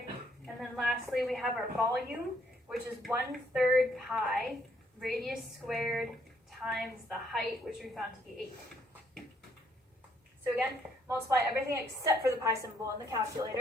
And then lastly, we have our volume, which is 1/3 pi radius squared times the height, which we found to be 8. So again, multiply everything except for the pi symbol in the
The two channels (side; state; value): both; normal; correlation 0.69